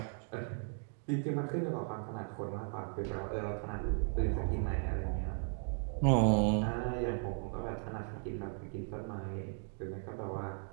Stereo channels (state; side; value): silent; left; 53 dB below the other